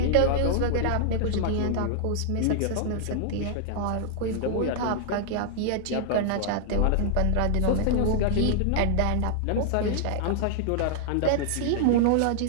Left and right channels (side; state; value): both; different; correlation -0.01